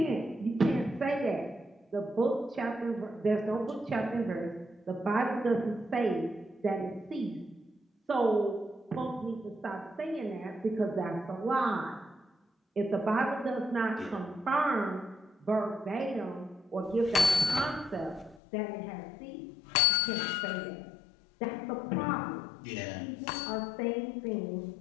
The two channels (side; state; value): right; drops out; at 18.4 s